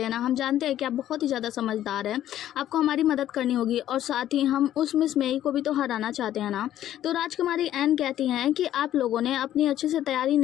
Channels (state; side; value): quieter; right; 12.1 dB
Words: ना, हम जानते हैं कि आप बहुत ही ज़्यादा समझदार हैं, आपको हमारी मदद करनी होगी और साथ ही हम उस मिस मेई को भी तो हराना चाहते हैं ना। तो राजकुमारी एन कहती हैं कि आप लोगों ने अपनी अच्छे से तैयारी